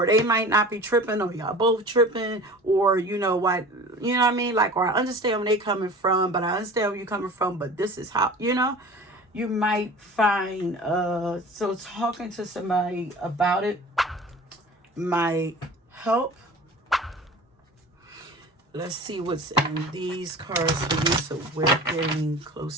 they might not be tripping, or y'all both tripping, or you know what I mean? Like, or I understand where they coming from, but I understand where you're coming from, but this is how, you know, you might find, so talking to somebody about it might help. Let's see what's in these cards for you. So we're getting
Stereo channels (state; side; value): normal; both; correlation 0.40